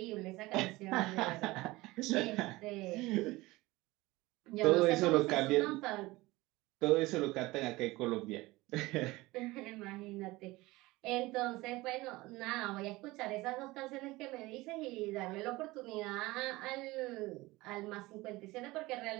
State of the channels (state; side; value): quieter; left; 20.4 dB